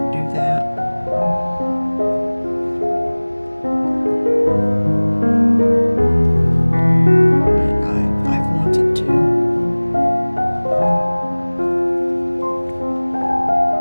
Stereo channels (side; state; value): both; inverted; correlation -1.00